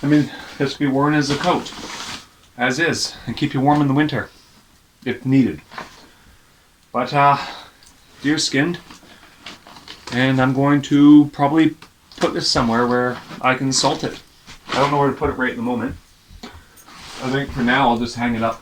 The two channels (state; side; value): identical; both; correlation 1.00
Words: I mean, this can be worn as a coat, as is, and keep you warm in the winter if needed. But deer skinned, and I'm going to probably put this somewhere where I can salt it. I don't know where to put it right in the moment. I think for now I'll just hang it up